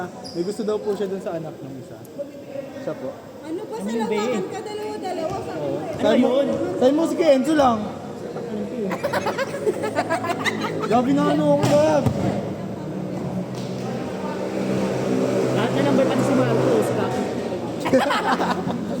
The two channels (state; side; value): identical; both; correlation 1.00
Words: may gusto daw po siya dun sa anak ng isa. Siya po. Ano ba sa lawakan ka? Dalawa-dalawa sa Ano yun? Sabi mo si Kenzo lang. Gabi na ano ako Gab. Lahat na number pati si Marcos.